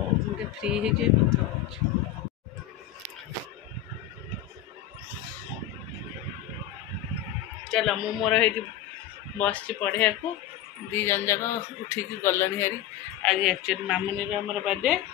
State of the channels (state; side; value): quieter; right; 11.7 dB